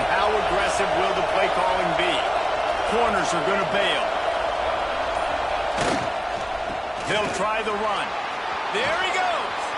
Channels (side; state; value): both; identical; correlation 1.00